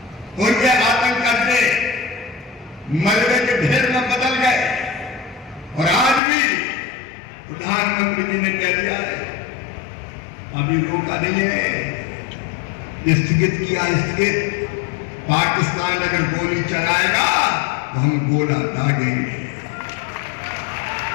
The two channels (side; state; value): right; drops out; at 6.2 s